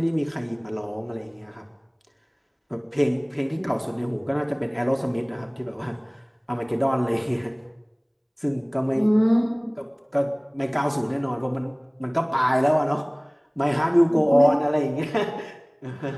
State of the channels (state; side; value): identical; both; correlation 1.00